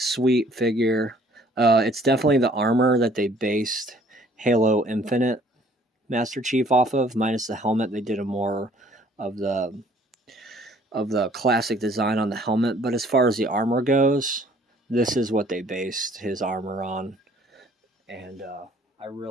figure. It's definitely the armor that they based Halo Infinite Master Chief off of, minus the helmet. They did a more of the classic design on the helmet. But as far as the armor goes, this is what they based his armor on, and I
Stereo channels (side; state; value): both; normal; correlation 0.58